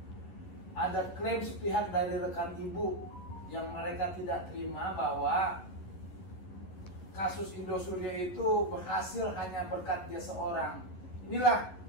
ada klaim sepihak dari rekan Ibu yang mereka tidak terima bahwa kasus Indosuria itu berhasil hanya berkat dia seorang. Inilah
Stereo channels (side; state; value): right; late; 11 ms